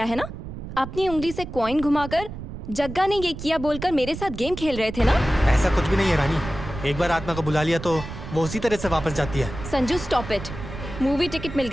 है ना? अपनी उंगली से कॉइन घुमाकर जग्गा ने ये किया बोलकर मेरे साथ गेम खेल रहे थे ना? ऐसा कुछ भी नहीं है रानी। एक बार आत्मा को बुला लिया तो वो उसी तरह से वापस जाती है। Sanju stop it. Movie ticket मिल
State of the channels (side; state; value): right; noise; rumble, 10 dB below the sound